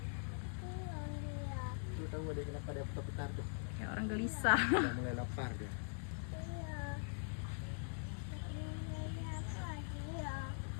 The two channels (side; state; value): right; silent; digital silence